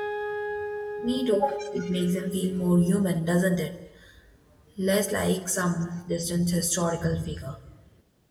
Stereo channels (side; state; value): both; identical; correlation 1.00